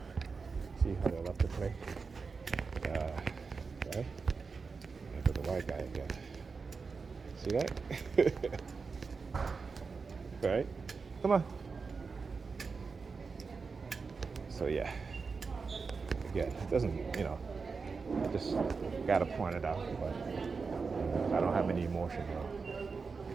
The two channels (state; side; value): quieter; left; 4.8 dB